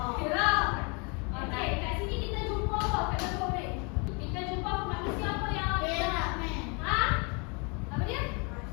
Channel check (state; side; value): quieter; right; 33.1 dB